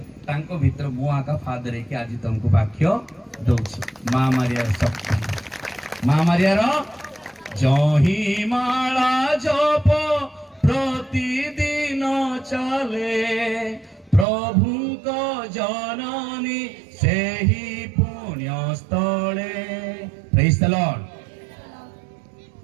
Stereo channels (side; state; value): left; drops out; at 14.2 s